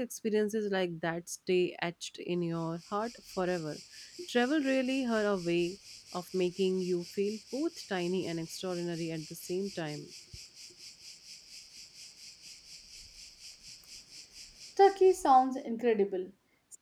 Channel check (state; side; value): identical; both; correlation 1.00